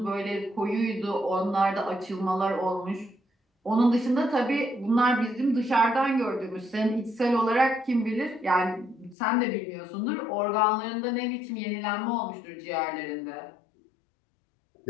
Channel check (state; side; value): drops out; right; at 9.2 s